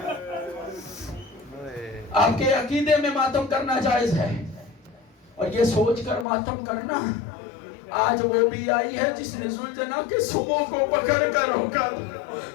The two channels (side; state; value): right; drops out; at 6.2 s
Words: آپ کے عقیدے میں ماتم کرنا جائز ہے. اور یہ سوچ کر ماتم کرنا آج وہ بھی آئی ہے جس نے ذوالجلال کے سموں کو پکڑ کر روکا.